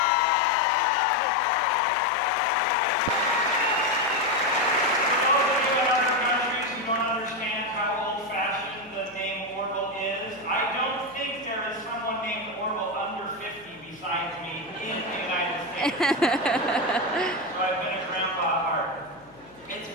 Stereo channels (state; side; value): noise; left; hum, 25 dB below the sound